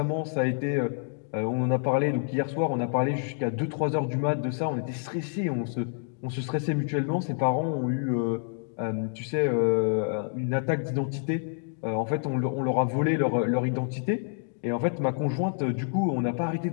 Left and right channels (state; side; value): silent; right; digital silence